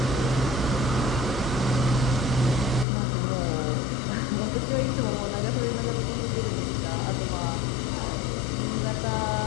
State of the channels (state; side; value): drops out; right; at 2.9 s